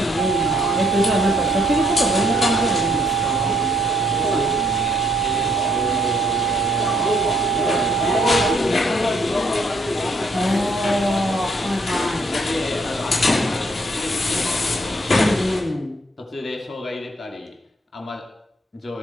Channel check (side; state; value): both; normal; correlation 0.68